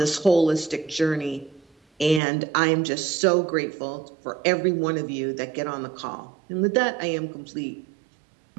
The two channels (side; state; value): left; drops out; at 2.2 s